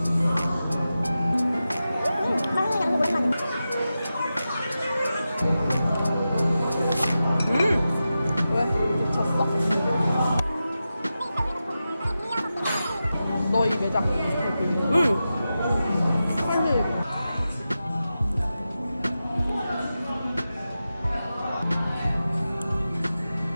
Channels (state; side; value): inverted; both; correlation -0.92